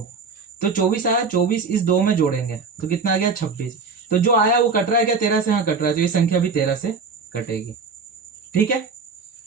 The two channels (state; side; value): quieter; left; 4.7 dB